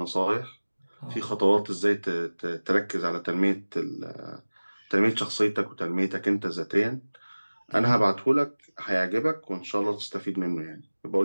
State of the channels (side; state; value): both; inverted; correlation -1.00